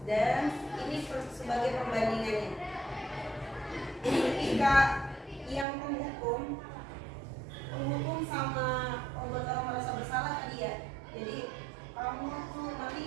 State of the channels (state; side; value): drops out; left; at 5.7 s